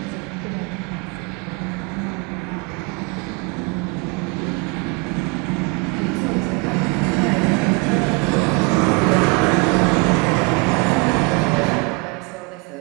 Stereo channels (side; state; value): left; quieter; 29.1 dB